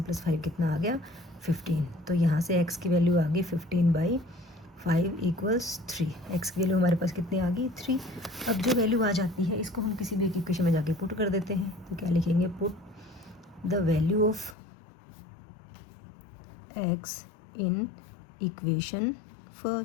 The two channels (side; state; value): right; drops out; at 14.6 s